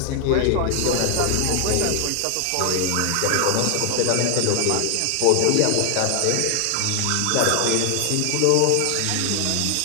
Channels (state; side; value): different; both; correlation 0.00